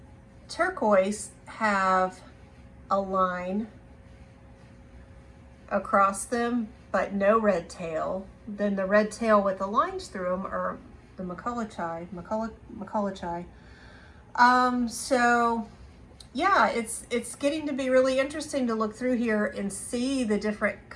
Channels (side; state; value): both; identical; correlation 1.00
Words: turquoise have a line across them, but no red tail. Then the red tail with the lines through them are the MacCullochi. So yeah, it's getting to be really interesting to look through here and see the different